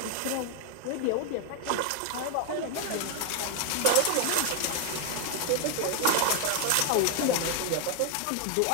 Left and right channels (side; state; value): both; different; correlation 0.00